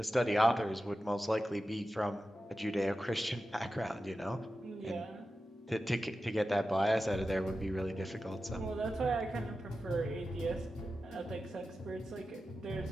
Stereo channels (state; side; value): normal; both; correlation 0.92